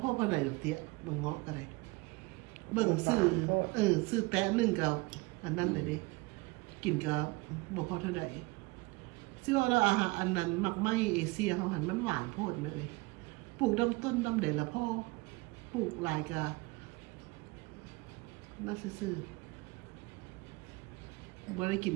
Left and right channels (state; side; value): quieter; left; 24.4 dB